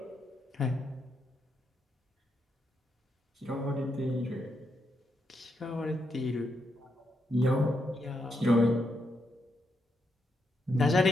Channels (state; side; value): normal; both; correlation 0.81